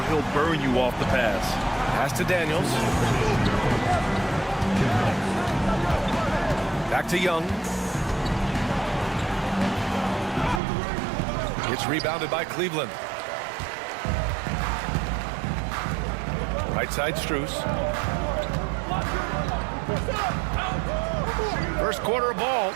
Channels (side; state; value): left; drops out; at 10.6 s